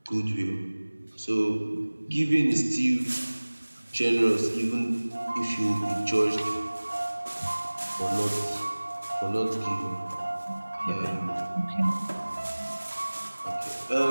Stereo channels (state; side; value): inverted; both; correlation -1.00